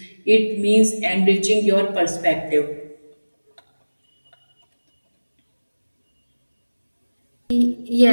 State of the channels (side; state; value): both; inverted; correlation -1.00